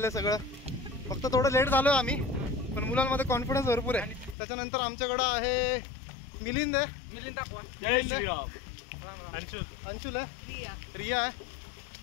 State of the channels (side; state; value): right; drops out; at 4.4 s